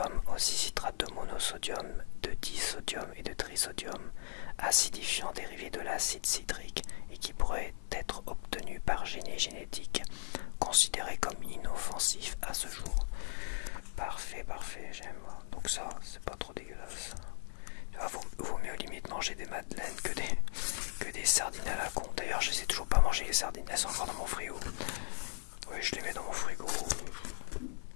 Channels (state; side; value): silent; right; 53 dB below the other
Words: aussi citrate de monosodium, de disodium et de trisodium, acidifiant dérivé de l'acide citrique et qui pourrait être obtenu par génie génétique, considéré comme inoffensif à ce jour. Parfait, parfait, j'aime. Donc ça, c'est pas trop dégueulasse. Vaut mieux limite manger des madeleines que des sardines à la con. D'ailleurs, je sais toujours pas manger les sardines, elles sont encore dans mon frigo. Oui, je les mets dans mon frigo.